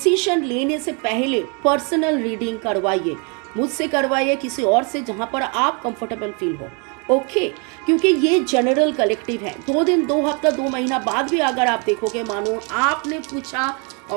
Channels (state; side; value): quieter; left; 34.9 dB